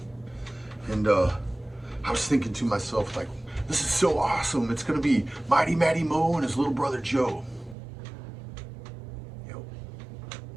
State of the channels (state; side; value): drops out; left; at 7.8 s